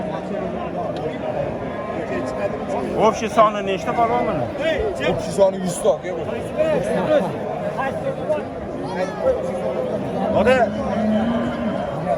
Общий soni nechta polvon buni? Общий soni 100 ta aka bu. Oda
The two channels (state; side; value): identical; both; correlation 1.00